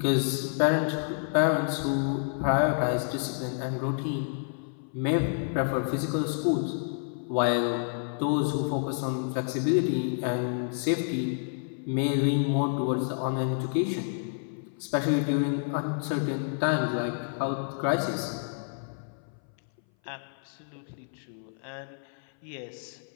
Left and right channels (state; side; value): silent; right; 58 dB below the other